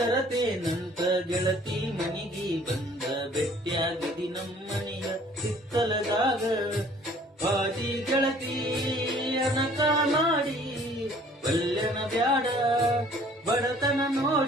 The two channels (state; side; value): normal; both; correlation 0.55